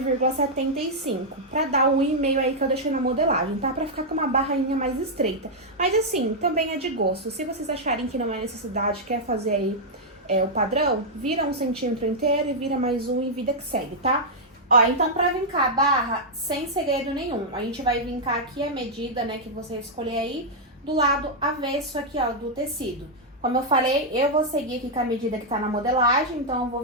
pra dar o 1,5 aí que eu deixei na modelagem, tá? Pra ficar com uma barrinha mais estreita. Mas assim, também é de gosto. Se vocês acharem que não é necessidade, quer fazer aí o padrão, vira 1 centímetro inteiro e vira mais um e vida que segue, tá? Ó, então pra vincar a barra, sem segredo nenhum, a gente vai vincar aqui a medida, né, que você escolher aí, do lado avesso aqui, ó, do tecido. Como eu falei, eu vou seguir aqui com a medida que tá na modelagem, então eu vou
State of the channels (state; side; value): normal; both; correlation -0.05